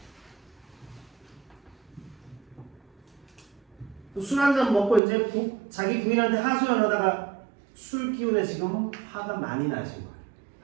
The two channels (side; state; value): left; drops out; at 5.0 s